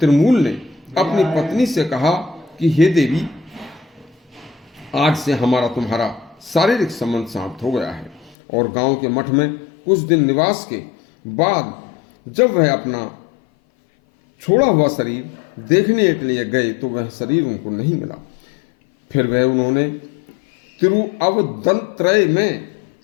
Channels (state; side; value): drops out; right; at 8.3 s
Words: ने अपनी पत्नी से कहा कि हे देवी, आज से हमारा तुम्हारा शारीरिक संबंध समाप्त हो गया है। और गांव के मठ में कुछ दिन निवास के बाद जब वह अपना छोड़ा हुआ शरीर देखने के लिए गए तो वह शरीर उनको नहीं मिला। फिर वह उन्होंने तिरुअवदंत्रय में